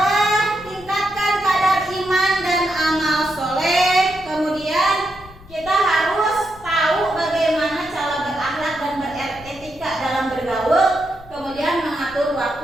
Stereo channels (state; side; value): noise; left; rumble, 21 dB below the sound